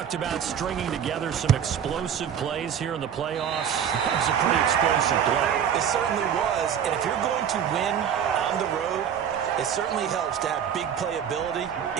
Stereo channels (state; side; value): quieter; left; 8.5 dB